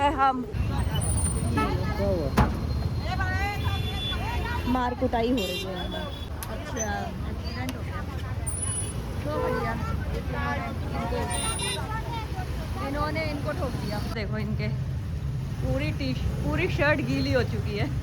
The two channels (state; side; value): identical; both; correlation 1.00